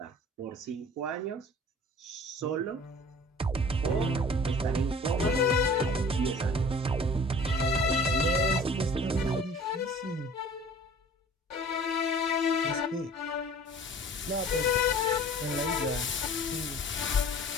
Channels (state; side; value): normal; both; correlation 0.46